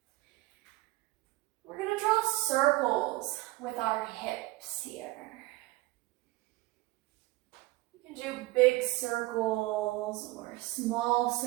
We're going to draw circles with our hips here. You can do big circles or small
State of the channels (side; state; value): left; quieter; 20.2 dB